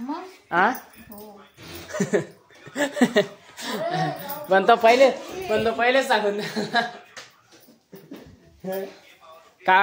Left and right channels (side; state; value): both; identical; correlation 1.00